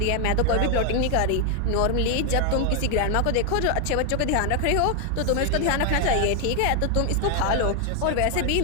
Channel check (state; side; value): different; both; correlation 0.00